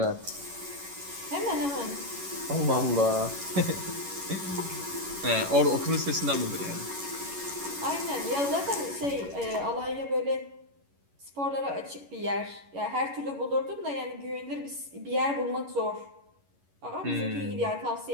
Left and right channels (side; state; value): left; late; 11 ms